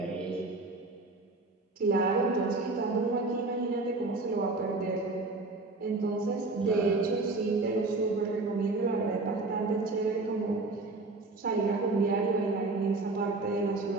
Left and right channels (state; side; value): quieter; left; 3.3 dB